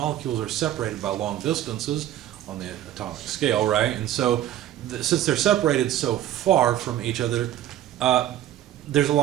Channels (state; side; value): quieter; left; 12.3 dB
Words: are separated by long distances on the atomic scale, right? And so, since they're separated so far from each other, there's a